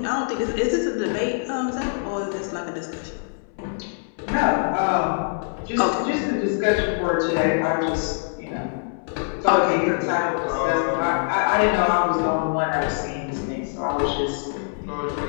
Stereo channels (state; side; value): silent; right; 63 dB below the other